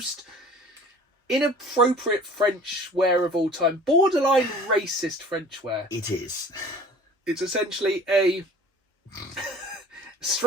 inappropriate French wear of all time. Borderline racist French wear. It is. It's essentially a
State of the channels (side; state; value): both; normal; correlation 0.47